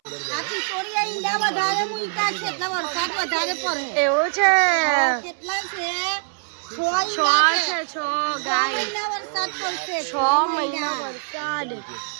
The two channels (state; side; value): silent; left; 63 dB below the other